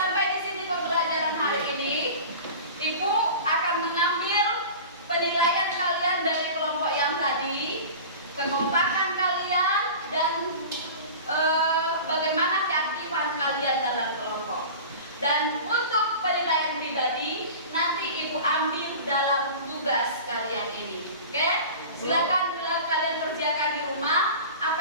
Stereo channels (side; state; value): both; inverted; correlation -0.36